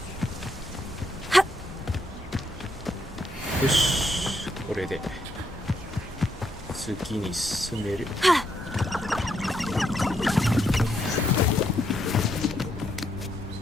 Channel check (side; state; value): both; normal; correlation 0.76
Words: よし、これで次に進める。